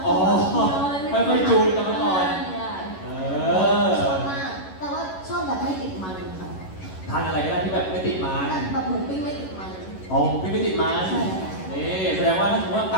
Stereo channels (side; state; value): right; late; 11 ms